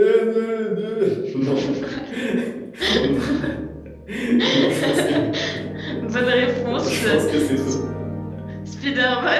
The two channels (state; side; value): identical; both; correlation 1.00